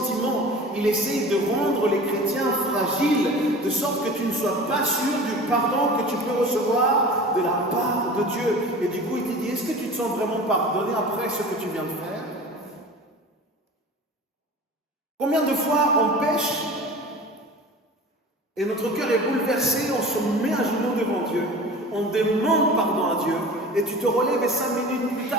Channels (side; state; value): both; normal; correlation 0.38